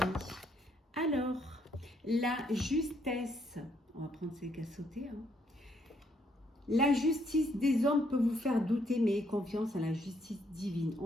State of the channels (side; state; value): both; normal; correlation 0.71